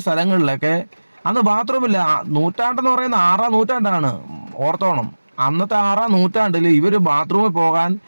സ്ഥലങ്ങളിലൊക്കെ അന്ന് ബാത്റൂമില്ല. നൂറ്റാണ്ടെന്ന് പറയുന്ന 6-ാം നൂറ്റാണ്ടാണ്, ഓർത്തോണം. അന്നത്തെ 6-ാം നൂറ്റാണ്ടിൽ ഇവർ ബാത്റൂമിൽ പോകാൻ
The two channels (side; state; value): both; inverted; correlation -1.00